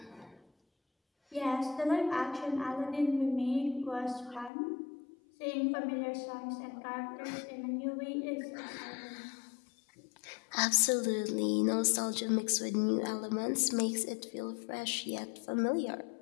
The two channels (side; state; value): right; drops out; at 4.5 s